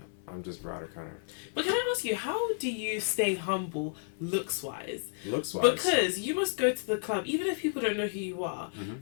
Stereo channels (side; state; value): right; silent; 57 dB below the other